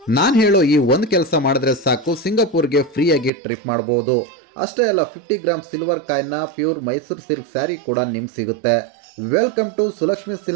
ನಾನು ಹೇಳೋ ಈ ಒಂದು ಕೆಲಸ ಮಾಡಿದ್ರೆ ಸಾಕು, ಸಿಂಗಾಪುರ್ಗೆ ಫ್ರೀಯಾಗಿ ಟ್ರಿಪ್ ಮಾಡಬಹುದು. ಅಷ್ಟೇ ಅಲ್ಲ, 50 ಗ್ರಾಮ್ ಸಿಲ್ವರ್ ಕಾಯಿನ್ನ ಪ್ಯೂರ್ ಮೈಸೂರು ಸಿಲ್ಕ್ ಸ್ಯಾರಿ ಕೂಡ ನಿಮ್ಗೆ ಸಿಗುತ್ತೆ. Welcome to Sulakshmi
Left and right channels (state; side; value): drops out; left; at 3.3 s